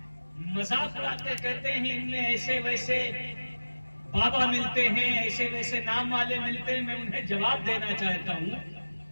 مذاق اڑاتے کہتے ہیں ان میں ایسے ویسے بابا ملتے ہیں, ایسے ویسے نام والے ملتے ہیں. میں انہیں جواب دینا چاہتا ہوں,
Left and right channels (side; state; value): both; inverted; correlation -1.00